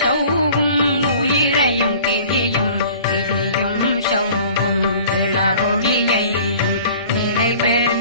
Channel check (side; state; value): both; inverted; correlation -0.47